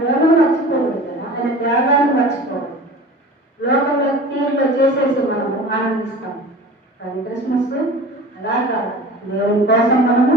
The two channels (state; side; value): normal; both; correlation 0.39